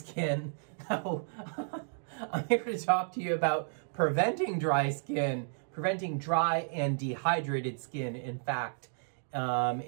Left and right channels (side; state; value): left; silent; digital silence